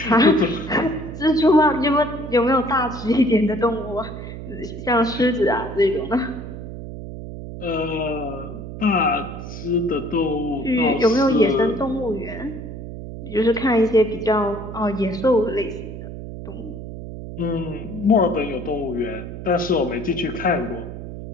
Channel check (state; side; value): noise; right; hum, 10 dB below the sound